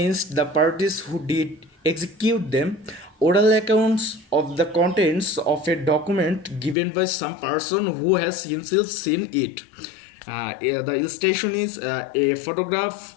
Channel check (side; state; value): right; drops out; at 6.8 s